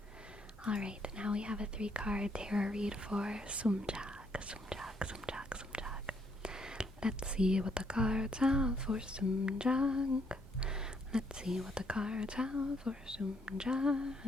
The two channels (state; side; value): normal; both; correlation 0.71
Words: Alright, now we have a 3-card tarot read for Sumjag. Sumjag, Sumjag, Sumjag. Let's see what the cards have for Sumjag. Let's see what the cards have for Sumjag.